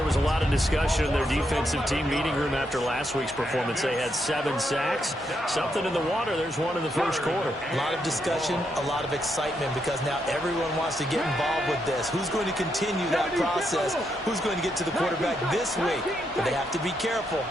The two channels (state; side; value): normal; both; correlation 0.80